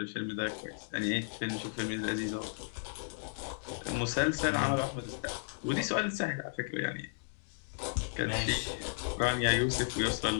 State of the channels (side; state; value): right; silent; digital silence